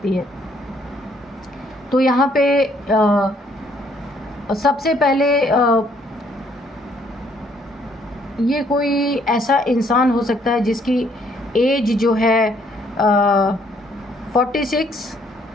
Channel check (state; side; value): normal; both; correlation 0.66